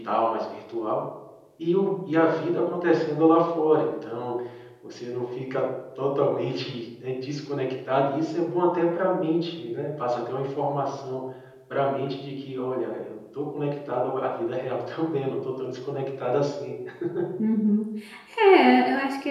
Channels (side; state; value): both; identical; correlation 1.00